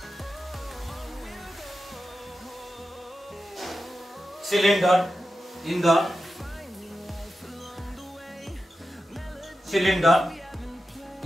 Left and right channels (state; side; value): normal; both; correlation 0.91